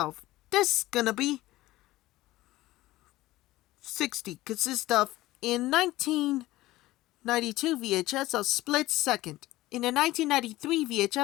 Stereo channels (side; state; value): right; quieter; 17.3 dB